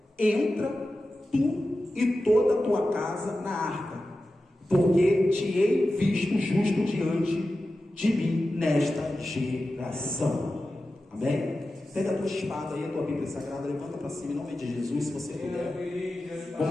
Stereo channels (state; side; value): normal; both; correlation 0.93